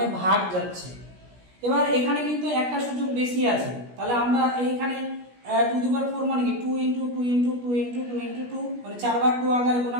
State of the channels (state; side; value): late; left; 17 ms